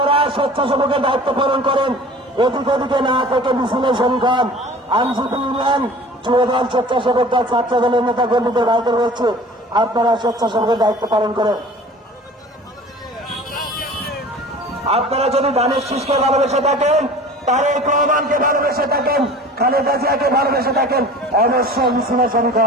স্বেচ্ছাসেবকের দায়িত্ব পালন করেন। এদিক ওদিকে না থেকে মিছিলে শরীক হন। আইনজীবী ইউনিয়ন, যুবদল, স্বেচ্ছাসেবক দল, ছাত্র দলের নেতা কর্মীদের ভাইদের বলছে আপনারা স্বেচ্ছাসেবকের দায়িত্ব পালন করেন। আপনারা যদি ধানের শীষকে ভালোবেসে থাকেন, তারেক রহমানকে ভালোবেসে থাকেন, খালেদা জিয়াকে ভালোবেসে থাকেন, অবশ্যই মিছিলে শরীক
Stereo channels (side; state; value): both; normal; correlation 0.43